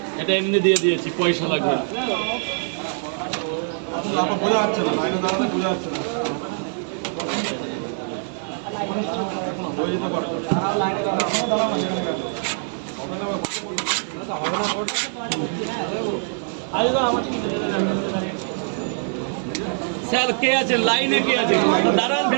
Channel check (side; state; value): left; silent; 63 dB below the other